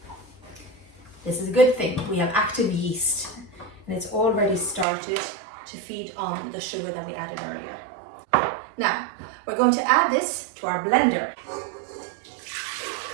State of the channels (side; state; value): left; drops out; at 4.9 s